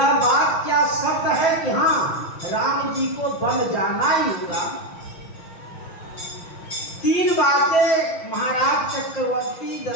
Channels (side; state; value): right; late; 6.1 ms